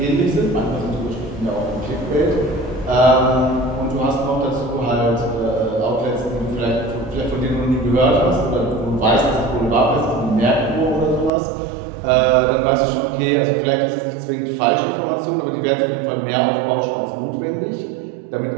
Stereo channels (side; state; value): left; drops out; at 11.3 s